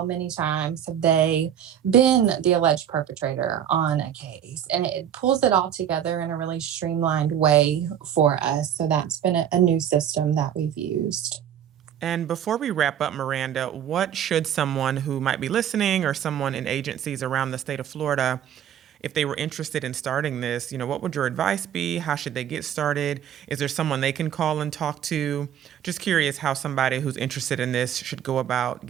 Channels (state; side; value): quieter; left; 9.7 dB